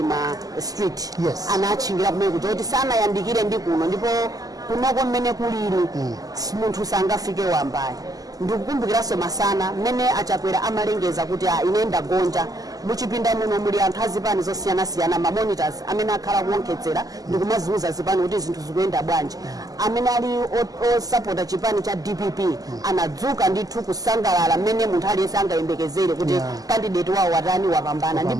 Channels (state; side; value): late; left; 0.17 ms